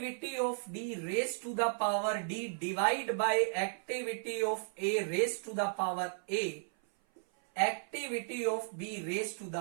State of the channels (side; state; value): left; silent; 55 dB below the other